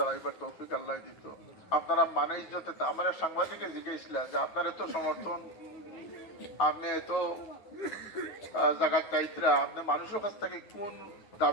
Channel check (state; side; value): late; right; 9.3 ms